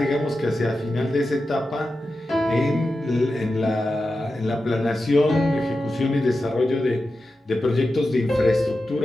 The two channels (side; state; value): both; normal; correlation 0.91